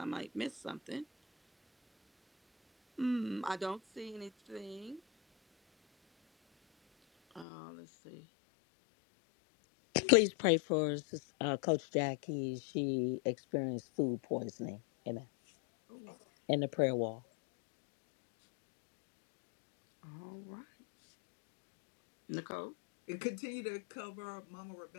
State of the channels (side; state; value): right; drops out; at 7.5 s